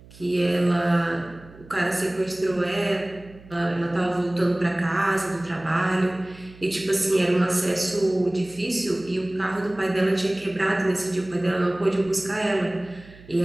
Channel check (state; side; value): noise; right; hum, 22 dB below the sound